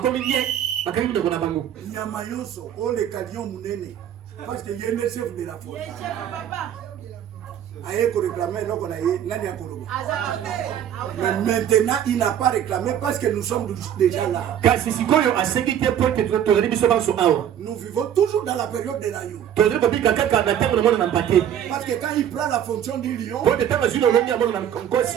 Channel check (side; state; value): left; quieter; 10.0 dB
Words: nye bakangi minoko na bango. Nyama nyonso, oh le calion munene. Parce que y a le chef de la forêt. Aye ko réclamer donc on a nani akoloba. Mais maintenant il n'a pas réclamé parce que nous sommes déjà là. Kasi sikoyo asengi te po te tozali biso banso awa. Nous vivons toujours dans la période de l'agneau. Tozali kobika kaka na ntango na mwana na mpate. Parce que quand il prend la fonction du lion, Po te ntango azwi lolongi ya mwana na